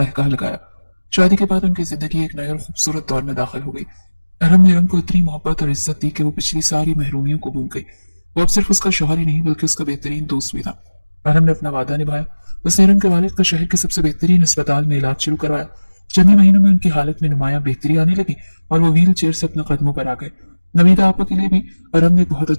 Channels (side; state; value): both; inverted; correlation -1.00